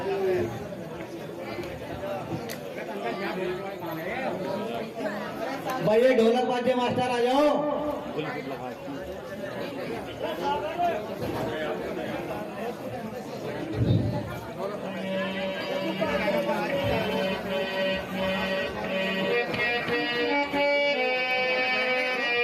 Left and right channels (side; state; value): both; identical; correlation 1.00